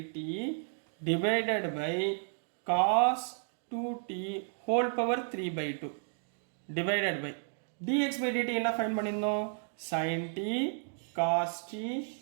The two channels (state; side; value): silent; left; digital silence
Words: divided by cos 2t whole power 3/2 divided by dx by dt என்ன ஃபைன் பண்ணியிருந்தோம், sin t cos t